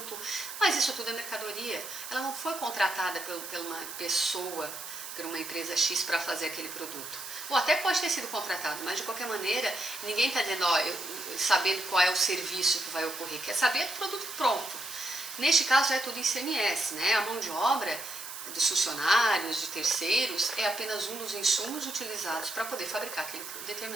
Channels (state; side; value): noise; right; hiss, 9 dB below the sound